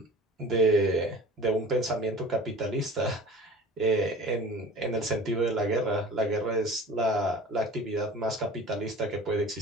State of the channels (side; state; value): both; normal; correlation 0.41